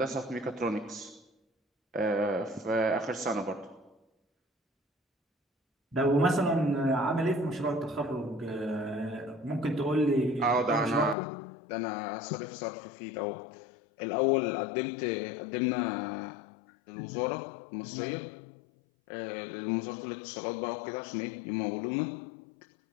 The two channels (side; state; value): right; drops out; at 11.2 s